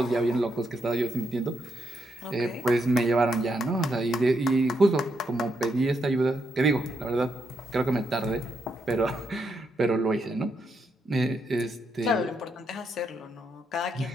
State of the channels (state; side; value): normal; both; correlation 0.79